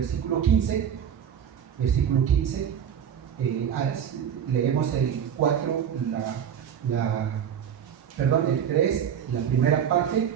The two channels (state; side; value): quieter; left; 8.6 dB